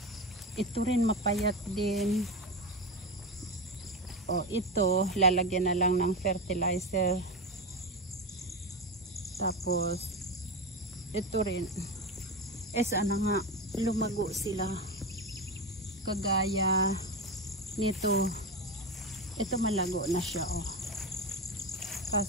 ito rin mapayat din. O, ito, lalagyan na lang ng fertilizer. Tapos, ito rin. Sana nga, lumago sila. Kagaya nito. Ito malago na siya, oh.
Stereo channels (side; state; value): both; normal; correlation 0.19